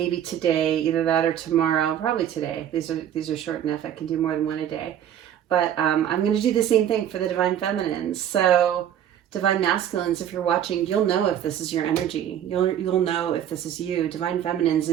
today, either that or tomorrow, probably today. These are short enough. I can do more than one a day. But I'm going to do the same thing for the Divine Feminines. So Divine Masculines, if you're watching, you'll know if this is your energy. You'll know if this is you. Divine Feminines,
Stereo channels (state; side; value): quieter; left; 10.2 dB